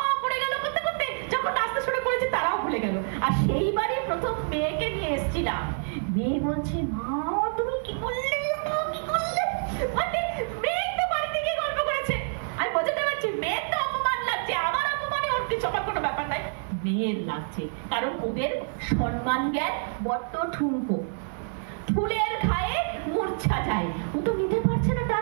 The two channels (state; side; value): silent; left; 58 dB below the other